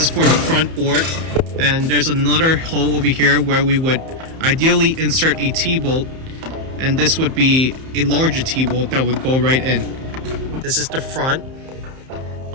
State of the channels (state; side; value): late; left; 31 ms